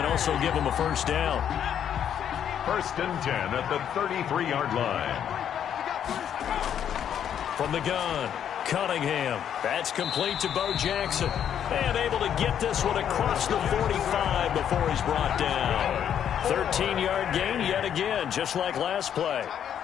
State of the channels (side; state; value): right; quieter; 9.2 dB